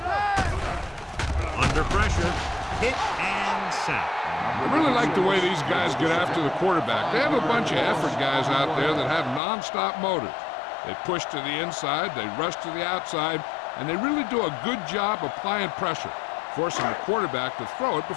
Under pressure, hit and sack. I really like the way these guys get after the quarterback. They have a bunch of effort guys out there that have nonstop motors. They push to the inside, they rush to the outside, and they really do a good job applying pressure, forcing the quarterback to throw it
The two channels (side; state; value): right; drops out; at 9.4 s